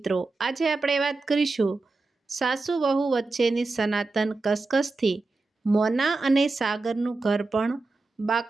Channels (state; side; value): quieter; left; 3.5 dB